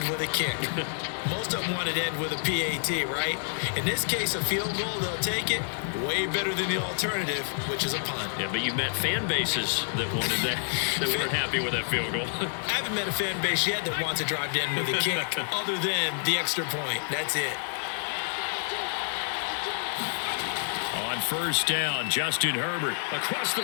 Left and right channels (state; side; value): silent; right; digital silence